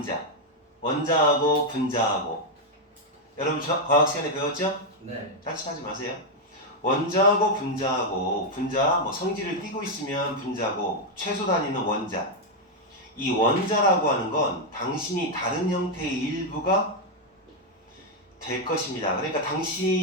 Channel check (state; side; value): normal; both; correlation 0.01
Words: 원자하고 분자하고. 여러분, 과학 시간에 배웠죠? 네. 짜증하지 마세요. 원자하고 분자하고, 분자, 성질을 띠고 있으면 분자고, 최소 단위는 원자. 이 원자라고 하는 건 당신이 다른 형태의 일부가 될 것입니다. 그러니까